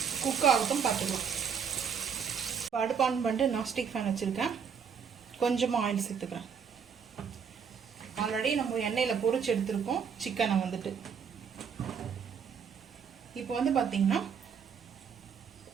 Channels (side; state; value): left; quieter; 6.9 dB